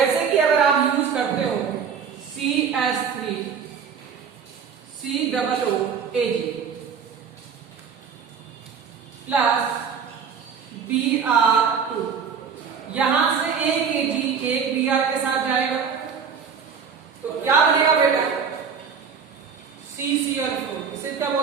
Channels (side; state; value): left; quieter; 6.5 dB